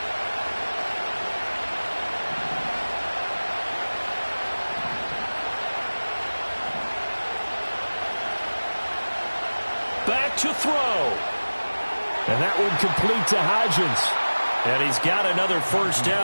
Back to throw. And that one complete to Hodgins. And he's got another first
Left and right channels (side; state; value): both; inverted; correlation -1.00